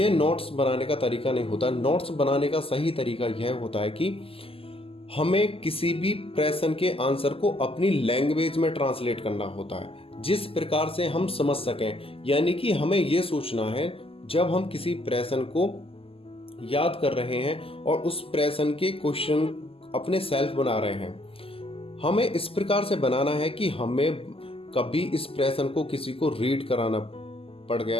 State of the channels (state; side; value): late; right; 0.27 ms